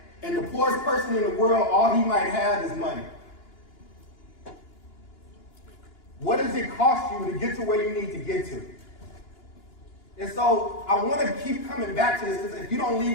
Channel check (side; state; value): right; late; 2.9 ms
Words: And the poorest person in the world, all he might have is money. What does it cost you to get to where you need to get to? And so I want to keep coming back to this because if you don't